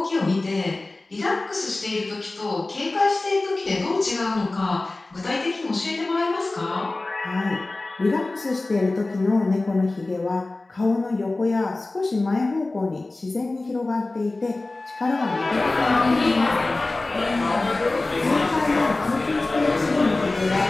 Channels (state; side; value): quieter; right; 3.1 dB